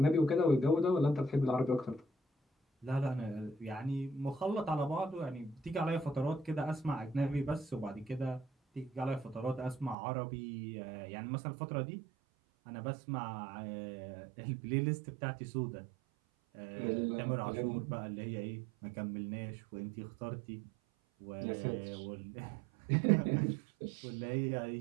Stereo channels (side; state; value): left; drops out; at 10.0 s